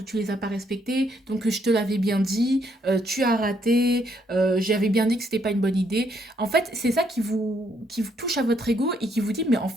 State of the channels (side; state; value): both; normal; correlation 0.72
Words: tu les as pas respectés, donc je te l'avais bien dit, tu as raté, j'avais bien dit que c'était pas une bonne idée. En fait, c'est ça qui vous touche à votre ego et qui vous dit, mais en